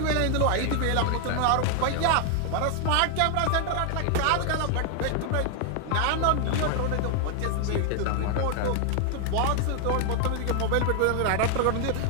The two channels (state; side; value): different; both; correlation 0.00